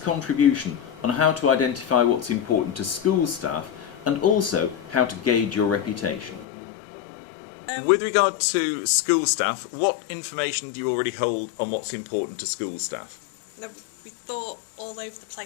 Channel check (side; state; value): right; drops out; at 6.5 s